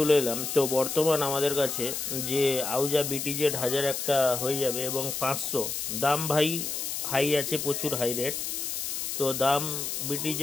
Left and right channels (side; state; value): left; noise; hiss, 3 dB below the sound